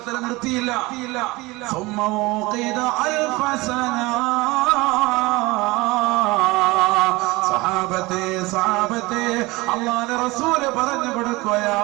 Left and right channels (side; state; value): left; quieter; 22.2 dB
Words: തആല നിർത്തിയില്ല. ثم وقد 1000 سنة. സഹാബത്തെ അല്ലാഹുവിന്റെ റസൂല് പറഞ്ഞു